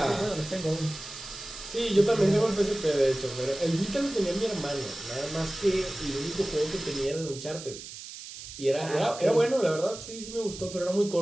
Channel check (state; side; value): noise; right; hiss, 12 dB below the sound